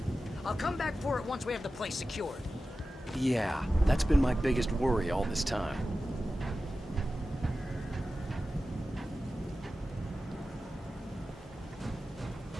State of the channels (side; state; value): both; normal; correlation 0.94